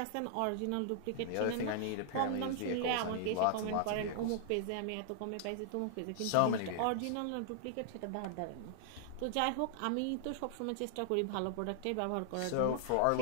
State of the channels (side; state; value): both; different; correlation -0.01